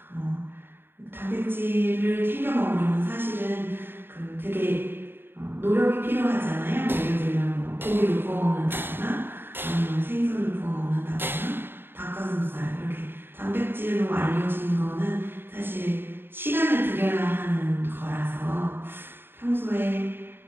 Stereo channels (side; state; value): left; late; 0.10 ms